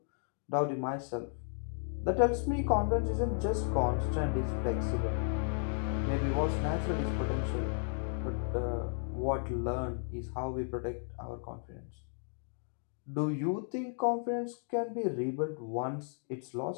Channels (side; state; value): right; silent; 55 dB below the other